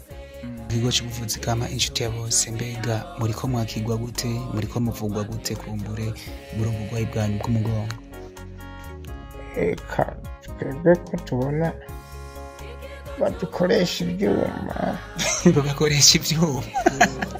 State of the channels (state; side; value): identical; both; correlation 1.00